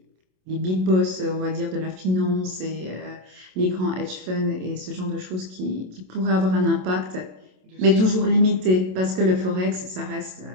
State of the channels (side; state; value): left; late; 27 ms